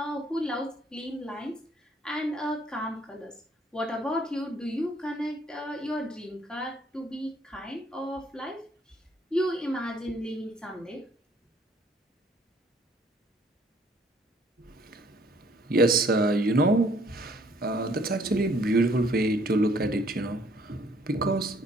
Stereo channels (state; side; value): normal; both; correlation 0.62